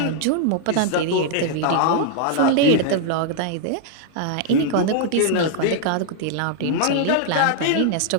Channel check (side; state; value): both; different; correlation 0.00